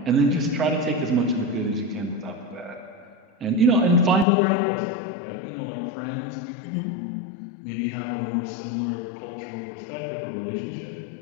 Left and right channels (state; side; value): drops out; right; at 4.2 s